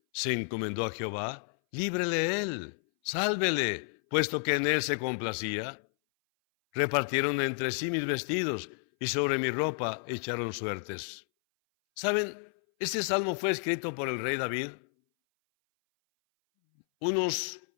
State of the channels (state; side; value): silent; right; 57 dB below the other